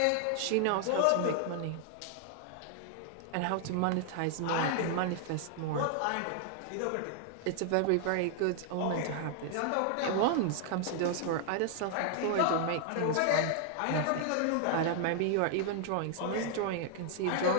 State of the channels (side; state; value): both; different; correlation 0.00